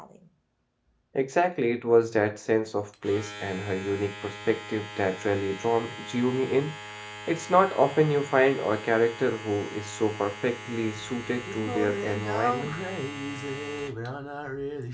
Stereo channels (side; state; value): both; identical; correlation 1.00